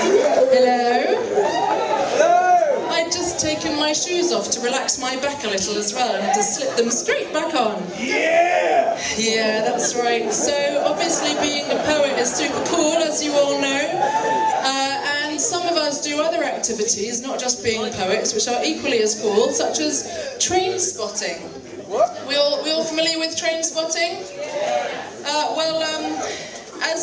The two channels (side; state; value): both; identical; correlation 1.00